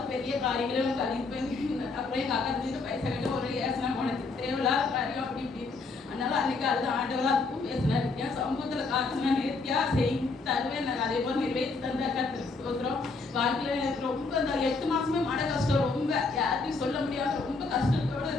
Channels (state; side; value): quieter; right; 3.9 dB